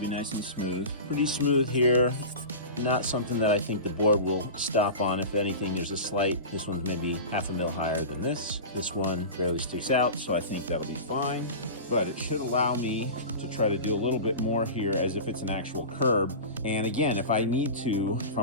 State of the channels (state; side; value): inverted; both; correlation -0.30